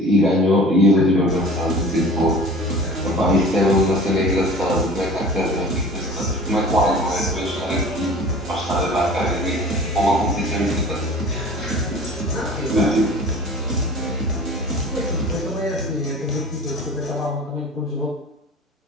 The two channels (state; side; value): normal; both; correlation 0.42